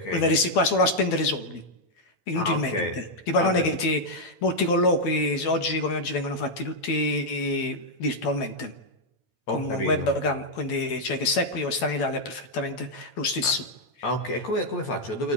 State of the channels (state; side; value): late; right; 8.9 ms